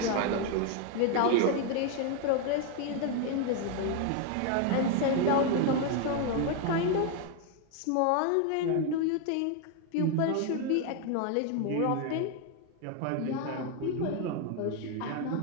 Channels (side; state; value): both; different; correlation 0.01